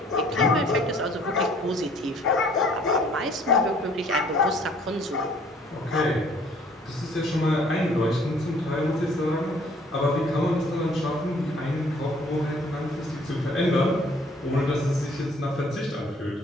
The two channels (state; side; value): normal; both; correlation 0.58